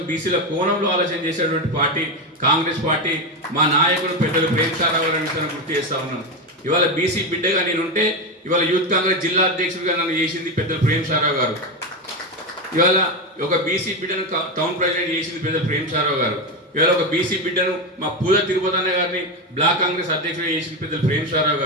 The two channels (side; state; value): both; normal; correlation 0.13